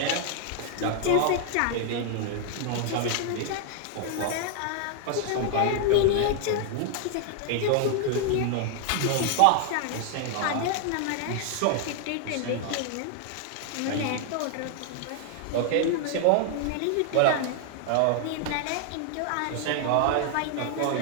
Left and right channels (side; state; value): both; different; correlation 0.00